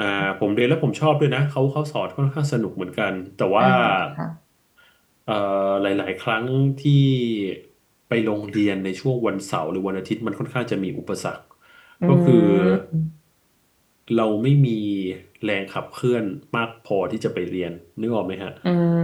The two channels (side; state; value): both; identical; correlation 1.00